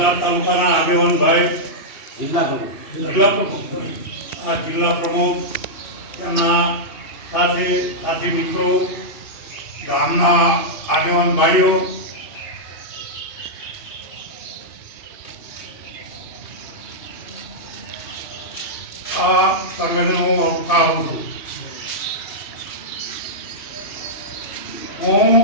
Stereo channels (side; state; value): right; late; 2.6 ms